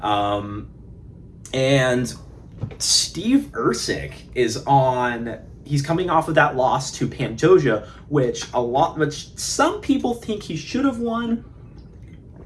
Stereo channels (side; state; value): both; identical; correlation 1.00